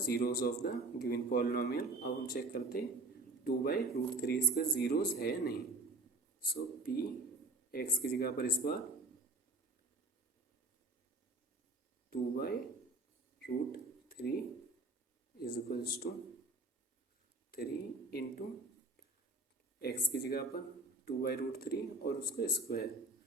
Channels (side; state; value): left; quieter; 3.1 dB